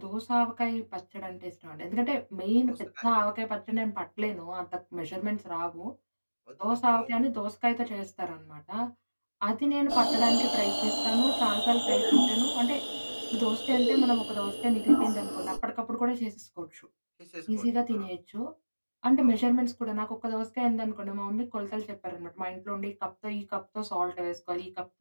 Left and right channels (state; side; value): inverted; both; correlation -1.00